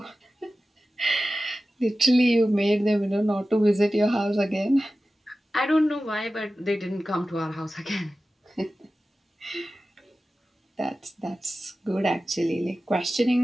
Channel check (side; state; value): both; normal; correlation 0.95